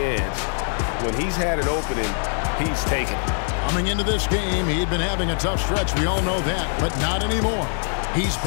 When he's had an opening, he's taken it. Coming into this game, he'd been having a tough stretch. We all know that, but not anymore. He's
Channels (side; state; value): right; silent; 60 dB below the other